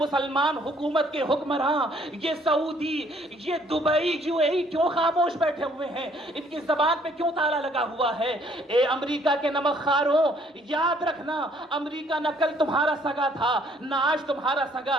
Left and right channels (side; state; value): both; normal; correlation 0.63